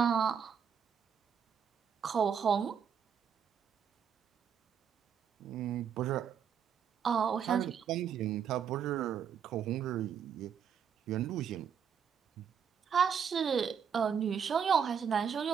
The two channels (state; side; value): quieter; left; 7.5 dB